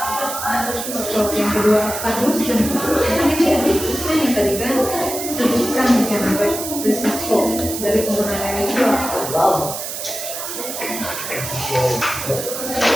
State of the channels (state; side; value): noise; right; hiss, 6 dB below the sound